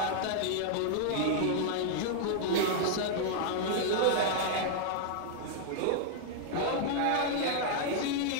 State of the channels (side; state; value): both; different; correlation -0.01